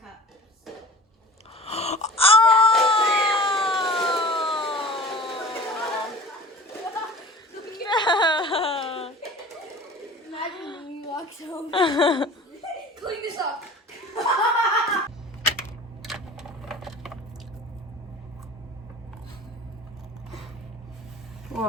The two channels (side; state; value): both; normal; correlation 0.41